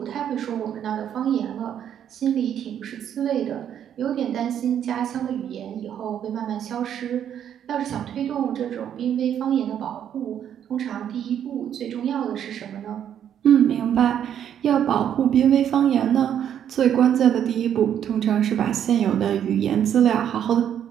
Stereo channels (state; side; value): quieter; left; 9.5 dB